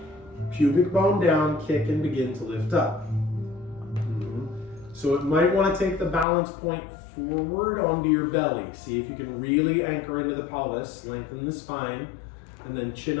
pubic bone down, kick and begin to lift up. So it might want to take the balance point forward onto your belly. See if you can really anchor into the pelvis, lengthen the spine, and then chin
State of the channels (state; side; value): drops out; right; at 6.2 s